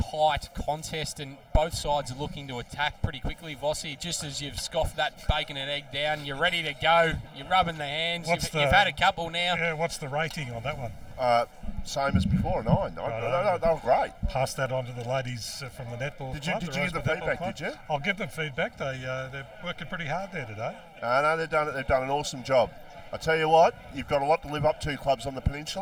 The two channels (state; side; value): identical; both; correlation 1.00